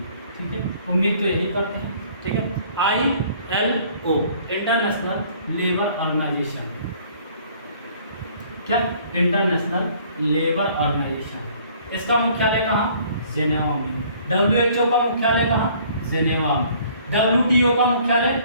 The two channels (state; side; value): inverted; both; correlation -0.57